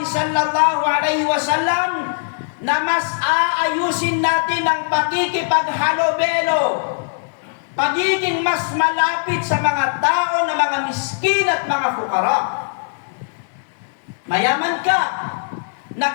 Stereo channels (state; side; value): silent; right; digital silence